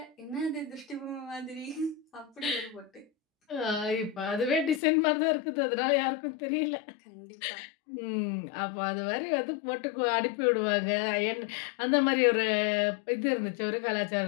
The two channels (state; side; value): drops out; right; at 4.8 s